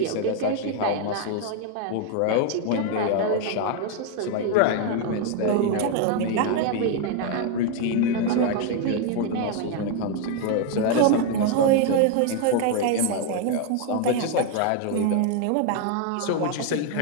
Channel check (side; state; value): both; different; correlation 0.01